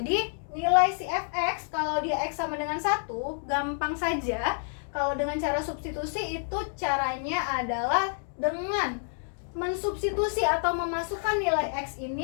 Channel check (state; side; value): silent; right; digital silence